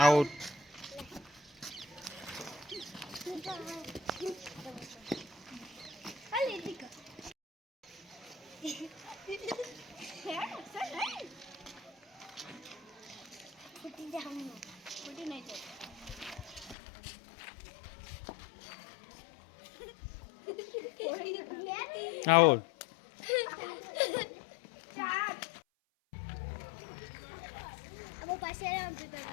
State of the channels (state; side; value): drops out; right; at 16.8 s